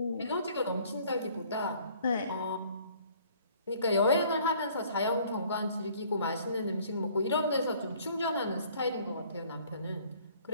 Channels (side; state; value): both; inverted; correlation -0.57